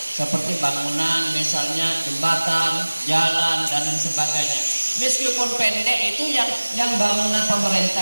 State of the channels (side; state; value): both; inverted; correlation -1.00